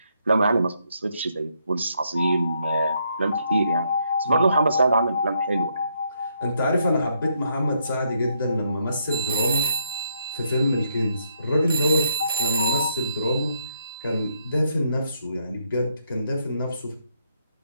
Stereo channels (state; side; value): inverted; both; correlation -0.75